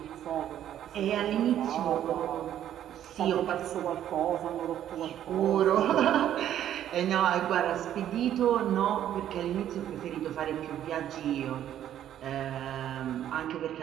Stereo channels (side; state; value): left; quieter; 11.0 dB